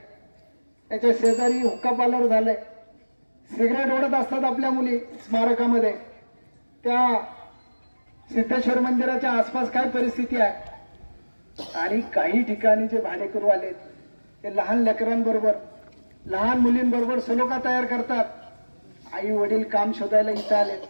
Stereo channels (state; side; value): inverted; both; correlation -1.00